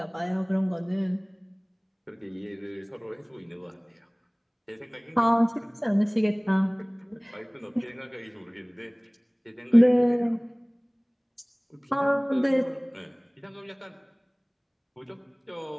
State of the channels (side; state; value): both; identical; correlation 1.00